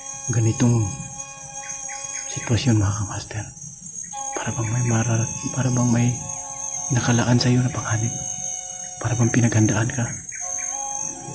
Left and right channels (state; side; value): identical; both; correlation 1.00